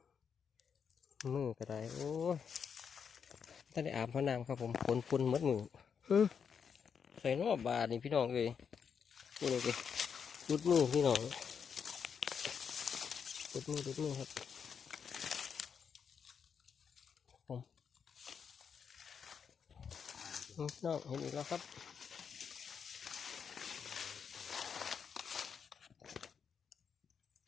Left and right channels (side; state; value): right; quieter; 6.9 dB